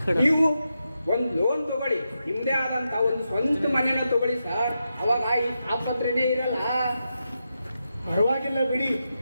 ನೀವು ಒಂದು ಲೋನ್ ತಗೊಳ್ಳಿ, ನಿಮ್ದೇ ಆದಂತ ಒಂದು ಸ್ವಂತ ಮನೆನ ತಗೊಳ್ಳಿ ಸರ್. ಅವಾಗ ಈ ಆಸ್ಪತ್ರೆನೇ ಇರಲ್ಲ. ಪರವಾಗಿಲ್ಲ ಬಿಡಿ,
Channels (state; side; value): inverted; both; correlation -0.87